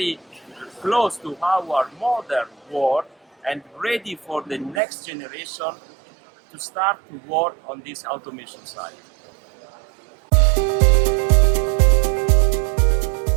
close to our modern world and ready for the next generation to start to work on this automation side.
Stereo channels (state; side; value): drops out; left; at 4.8 s